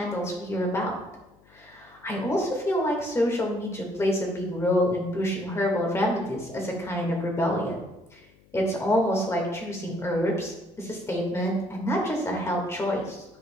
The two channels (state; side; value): noise; left; hum, 29 dB below the sound